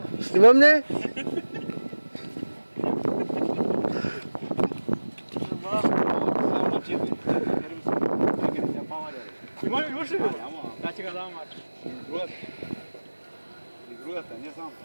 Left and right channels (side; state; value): both; inverted; correlation -1.00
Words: Снимам ли? Имаш ли? Да, че го дам мача. Другата, не знам.